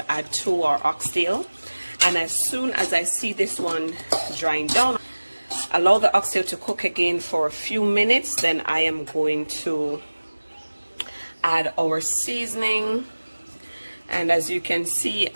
add to our oxtail, and as soon as I see this one drying down, allow the oxtail to cook again for a few minutes. Then I am going to add our seasoning, and as you can see,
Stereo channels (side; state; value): both; inverted; correlation -1.00